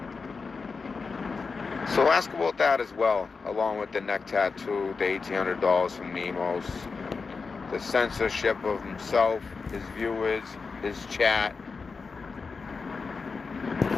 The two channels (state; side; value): quieter; right; 4.7 dB